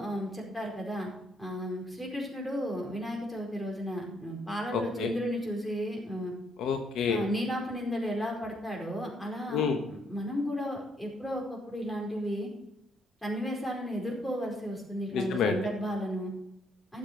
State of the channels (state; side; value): normal; both; correlation 0.70